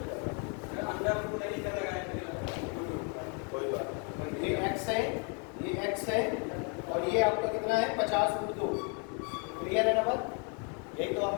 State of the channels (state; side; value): quieter; right; 37.5 dB